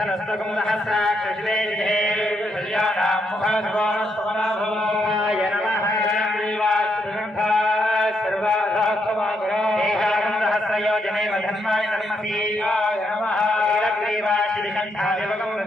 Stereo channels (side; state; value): both; normal; correlation 0.78